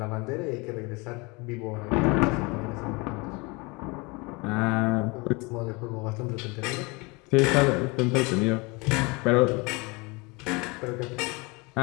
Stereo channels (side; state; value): right; quieter; 26.9 dB